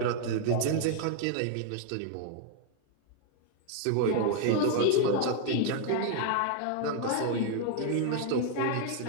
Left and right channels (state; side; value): different; both; correlation 0.00